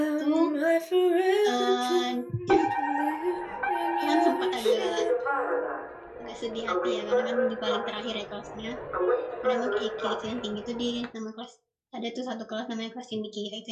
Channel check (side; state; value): both; identical; correlation 1.00